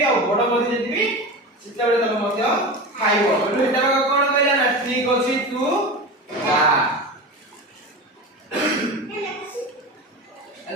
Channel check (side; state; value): both; normal; correlation 0.27